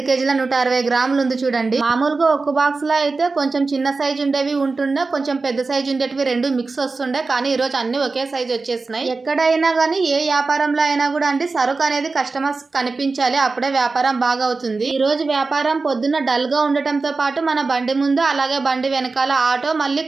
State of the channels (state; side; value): quieter; left; 3.9 dB